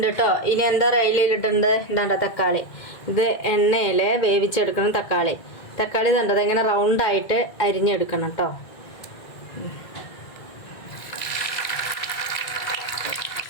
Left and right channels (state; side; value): late; right; 1.9 ms